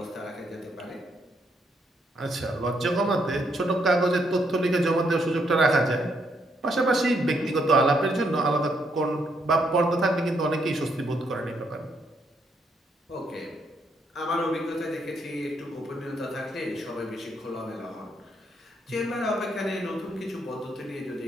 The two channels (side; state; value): both; normal; correlation 0.74